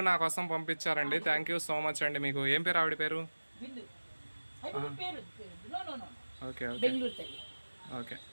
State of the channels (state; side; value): inverted; both; correlation -1.00